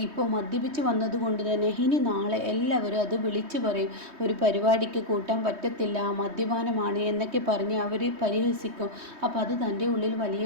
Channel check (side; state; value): left; late; 3.2 ms